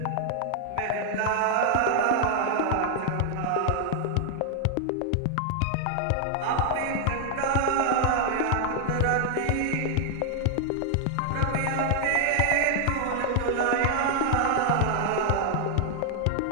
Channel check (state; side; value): different; both; correlation 0.00